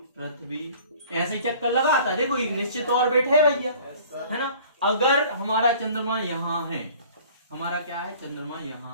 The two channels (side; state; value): both; inverted; correlation -0.49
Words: पृथ्वी ऐसे चक्कर लगाता है, देखो एक निश्चित ऑर्बिट है भैया, है ना। अगर हमारा चंद्रमा यहाँ है, हमारा क्या है चंद्रमा